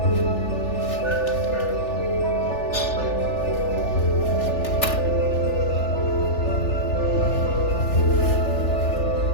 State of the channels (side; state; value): right; late; 3.4 ms